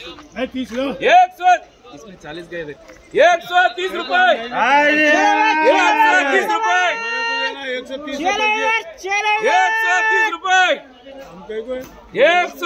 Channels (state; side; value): identical; both; correlation 1.00